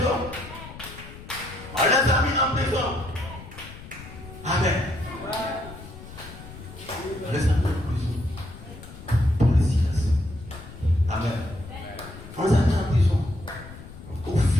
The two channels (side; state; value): left; noise; rumble, 15 dB below the sound